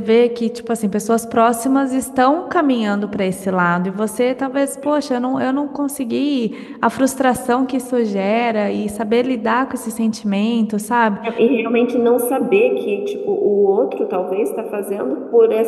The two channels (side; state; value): both; identical; correlation 1.00